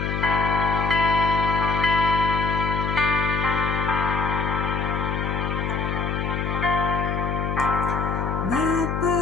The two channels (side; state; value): left; noise; hum, 1 dB below the sound